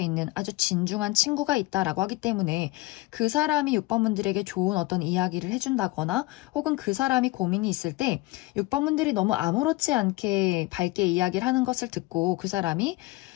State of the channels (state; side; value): quieter; right; 20.6 dB